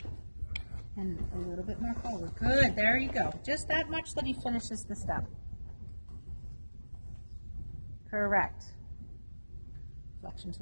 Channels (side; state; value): both; inverted; correlation -1.00